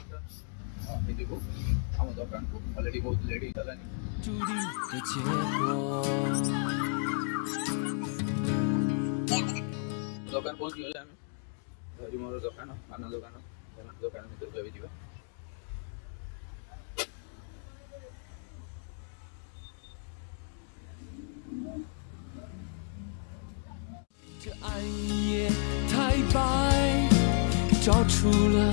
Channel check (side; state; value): right; silent; 56 dB below the other